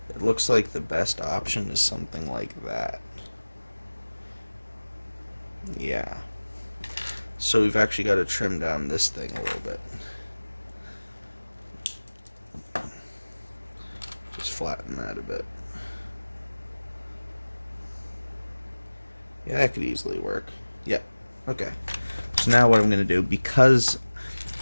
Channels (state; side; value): inverted; both; correlation -1.00